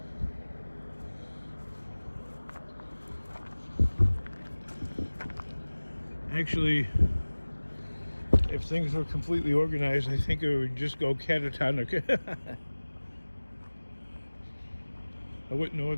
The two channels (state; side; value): inverted; both; correlation -1.00